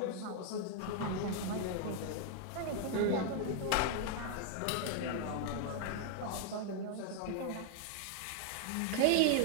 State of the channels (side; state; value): both; different; correlation 0.00